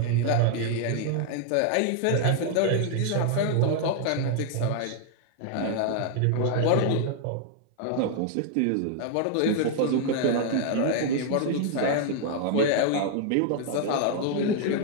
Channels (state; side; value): different; both; correlation 0.00